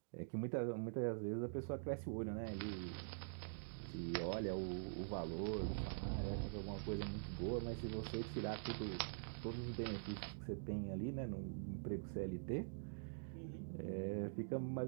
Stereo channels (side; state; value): left; silent; digital silence